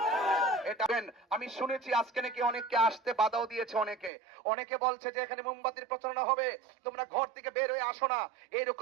এটা আমি শুনেছি আজকে নাকি অনেককে আসতে বাধাও দিয়েছে। অনেকে বলছে যে এখানে মোমবাতির প্রচারণা হবে, তোমরা ঘর থেকে বের হয়ে আসো না।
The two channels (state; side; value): drops out; left; at 4.1 s